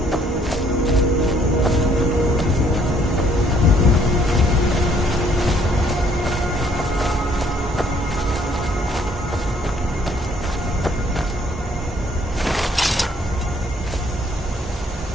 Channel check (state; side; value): normal; both; correlation 0.64